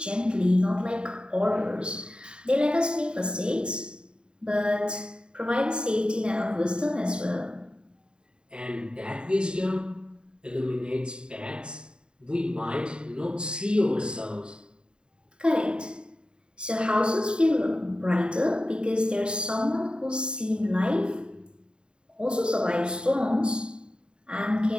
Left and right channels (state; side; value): late; left; 0.050 ms